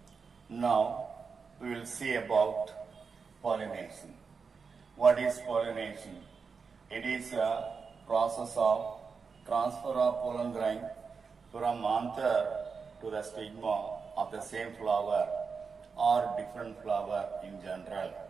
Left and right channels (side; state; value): left; quieter; 5.3 dB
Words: now we will see about pollination. What is pollination? It is a process of transfer of pollen grain from anther to the stigma of the same flower or different flower in general.